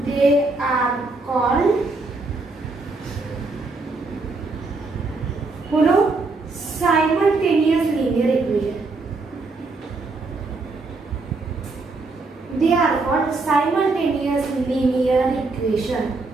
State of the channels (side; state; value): left; quieter; 3.6 dB